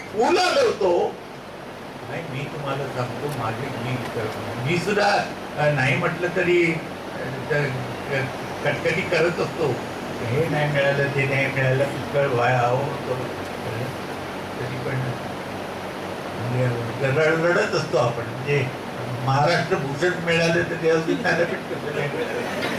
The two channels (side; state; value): both; identical; correlation 1.00